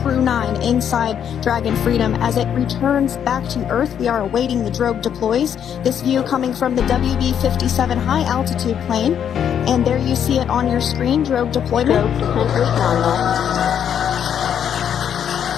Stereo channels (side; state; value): right; quieter; 8.8 dB